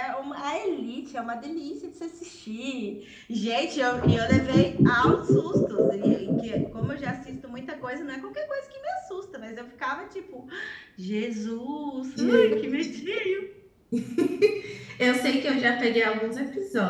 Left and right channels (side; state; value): both; identical; correlation 1.00